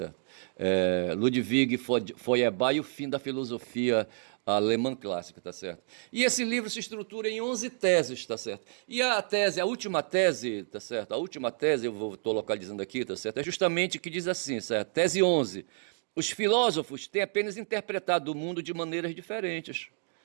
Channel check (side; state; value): left; silent; 58 dB below the other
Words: Ludwig Feuerbach e o fim da filosofia alemã clássica, tá certo? E esse livro se estrutura em 11 teses, tá certo? E a última tese, tá certo? A última tese, estou localizando aqui, tá certo? É justamente que diz assim, certo? Tese 11. Os filósofos têm apenas interpretado o mundo de maneiras diferentes.